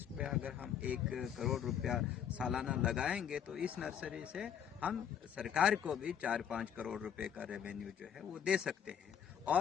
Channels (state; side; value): quieter; right; 8.7 dB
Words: पे अगर हम 1 करोड़ रुपया सालाना लगाएंगे तो इस नर्सरी से हम सरकार को भी 4-5 करोड़ रुपए का रेवेन्यू जो है वो दे सकते हैं।